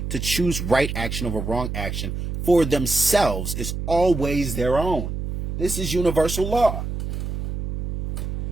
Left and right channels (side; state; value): right; noise; hum, 4 dB below the sound